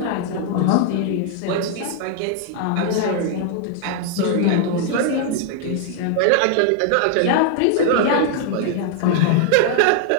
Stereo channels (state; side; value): different; both; correlation 0.00